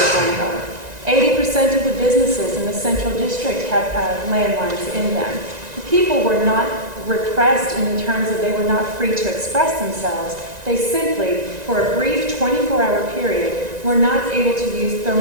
Langar. 80% of the businesses in the central district have landlines in them. The people were not repressed in terms of they were not free to express themselves. They simply, for a brief 24-hour period, were not able to use their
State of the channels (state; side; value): late; left; 1.9 ms